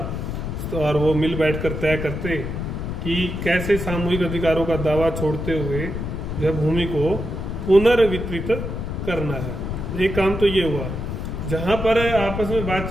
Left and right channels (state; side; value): noise; left; rumble, 4 dB below the sound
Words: तो और वो मिल बैठकर तय करते कि कैसे सामूहिक अधिकारों का दावा छोड़ते हुए जो है भूमि को पुनर्वितरित करना है। एक काम तो ये हुआ। जहां पर आपस में